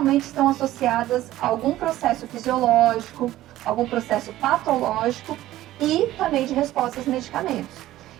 estão associadas a algum processo fisiológico, algum processo patológico e também de respostas a medicamentos.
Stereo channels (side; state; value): left; quieter; 14.9 dB